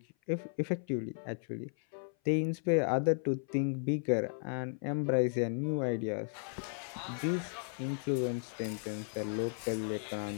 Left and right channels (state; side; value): silent; right; 54 dB below the other